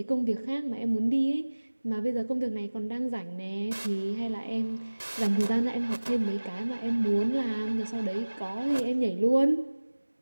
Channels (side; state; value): both; inverted; correlation -1.00